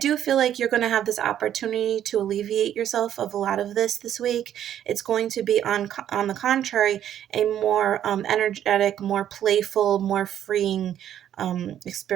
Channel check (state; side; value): quieter; left; 10.6 dB